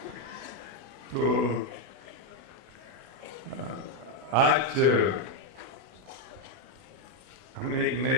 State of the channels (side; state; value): left; late; 32 ms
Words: तो आज हमने एक